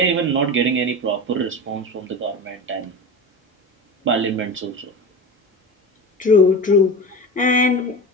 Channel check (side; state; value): both; normal; correlation 0.27